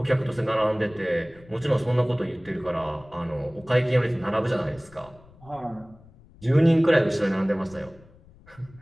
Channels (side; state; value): left; noise; rumble, 24 dB below the sound